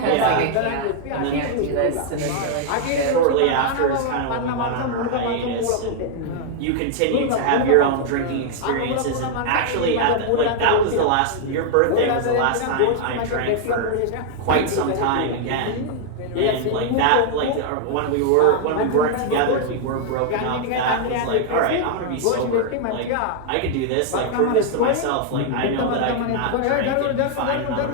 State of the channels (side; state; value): both; different; correlation 0.00